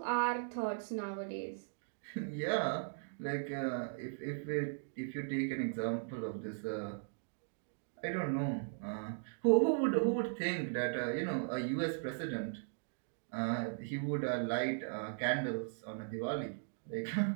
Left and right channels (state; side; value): silent; left; digital silence